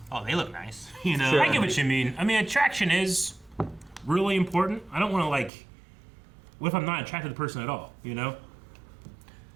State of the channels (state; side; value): drops out; left; at 5.5 s